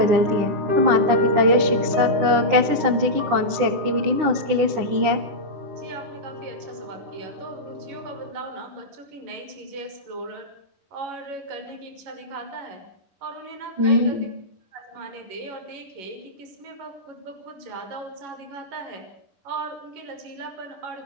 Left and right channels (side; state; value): left; late; 9.9 ms